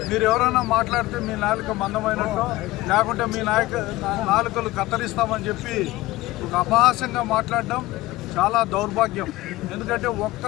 మీరు ఎవరైనా మాట్లాడితే మీ నాలుక మందమైనట్టు లేకుంటే మీ నాలుకలు కత్తిరిస్తామని చెప్పి ఒక అపహాస్యంగా మాట్లాడడం చాలా దౌర్భాగ్యం. ఎందుకంటే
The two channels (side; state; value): right; quieter; 18.6 dB